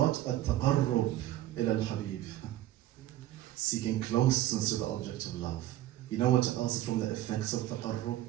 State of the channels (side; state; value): left; quieter; 14.0 dB